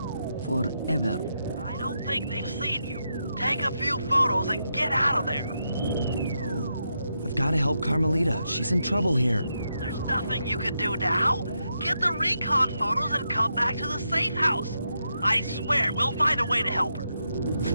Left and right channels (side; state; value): both; inverted; correlation -0.83